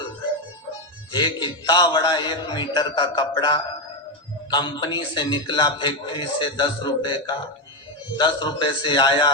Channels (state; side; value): normal; both; correlation 0.09